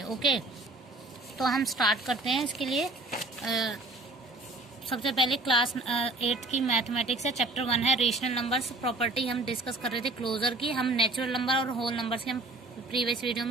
Okay तो हम start करते हैं. इसके लिए सबसे पहले क्लास 8 की मैथमेटिक्स है, चैप्टर 1 है रेशनल नंबर्स. प्रॉपर्टी हम डिस्कस कर रहे थे क्लोजर की. हम नेचुरल नंबर और होल नंबर्स की हम प्रीवियस वीडियो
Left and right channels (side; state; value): left; quieter; 3.0 dB